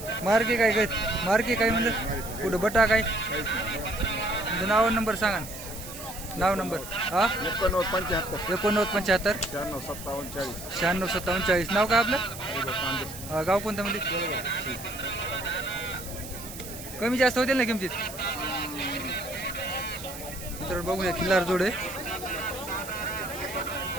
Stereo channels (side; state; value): right; noise; hiss, 12 dB below the sound